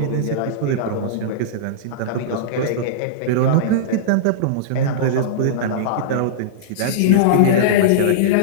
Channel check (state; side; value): different; both; correlation -0.03